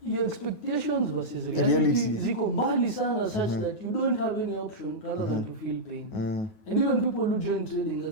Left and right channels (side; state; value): right; late; 9.4 ms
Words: expectations versus reality ziko mbali sana such that you don't have any option rather than to feel pain. And even people who join trading,